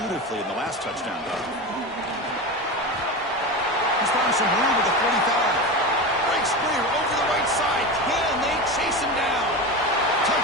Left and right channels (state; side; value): normal; both; correlation 0.24